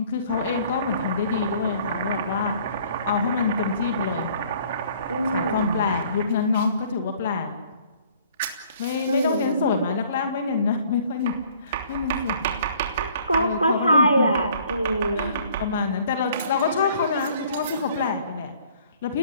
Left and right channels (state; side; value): inverted; both; correlation -0.56